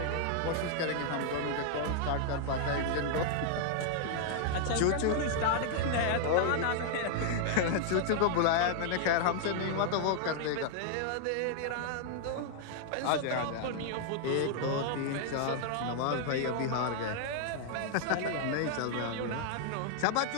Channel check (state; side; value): different; both; correlation 0.00